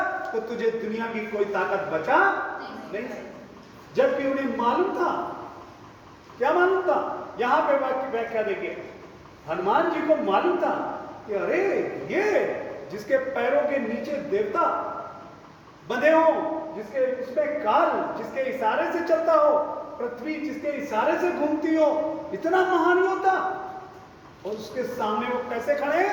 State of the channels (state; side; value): identical; both; correlation 1.00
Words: तो तुझे दुनिया की कोई ताकत बचा नहीं। जबकि उन्हें मालूम था, क्या मालूम था? यहां पे व्याख्या देखिए, हनुमान जी को मालूम था कि अरे ये जिसके पैरों के नीचे देवता बंधे हो, जिसके उसमें काल जिसके इशारे से चलता हो, पृथ्वी जिसके इशारे से घूमती हो, इतना महान होता, और उसके सामने वो कैसे खड़े